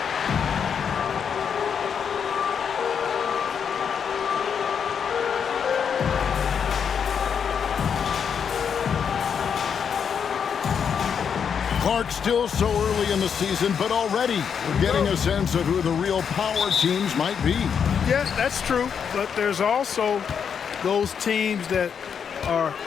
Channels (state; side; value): quieter; right; 7.2 dB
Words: Clark, still so early in the season, but already we're getting a sense of who the real power teams might be. Yeah, that's true. But there's also those teams that are